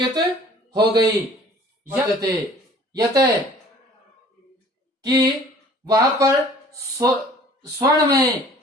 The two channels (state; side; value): normal; both; correlation 0.51